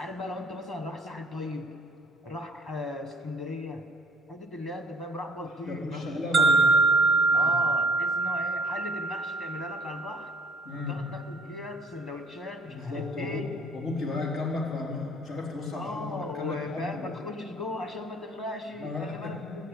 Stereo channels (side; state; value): both; normal; correlation 0.55